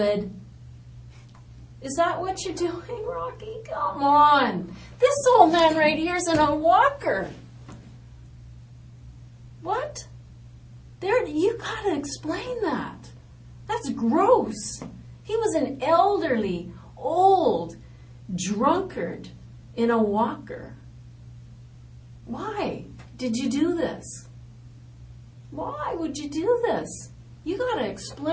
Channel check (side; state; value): both; identical; correlation 1.00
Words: Is that what you're doing, Rocky? Come on. This old man right here is in a walker. What? You gotta explain that. That's gross. He was an elderly, old drunkard in a walker. Why did you do this? Why would you do this? You gotta